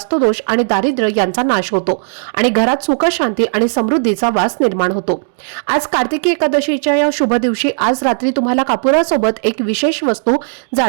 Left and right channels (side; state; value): left; silent; digital silence